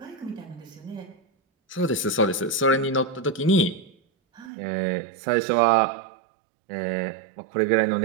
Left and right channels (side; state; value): left; drops out; at 4.5 s